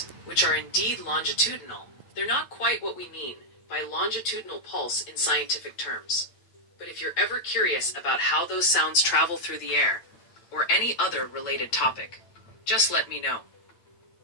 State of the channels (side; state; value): right; late; 8.8 ms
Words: which are indeed longitudinal, they're not quite what we mean by longitudinal pulse in scientific terms. But if you're ever curious about how those sounds travel through the air, or any other related topic, just let me know.